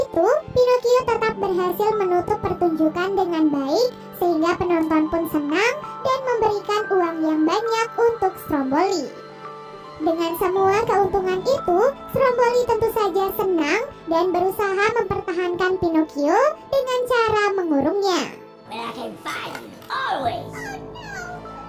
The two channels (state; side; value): identical; both; correlation 1.00